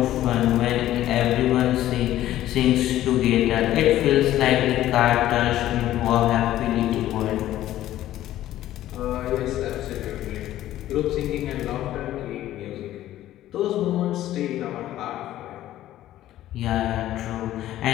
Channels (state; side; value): quieter; right; 13.6 dB